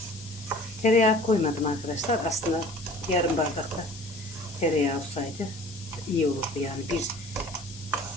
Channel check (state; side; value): noise; left; hiss, 16 dB below the sound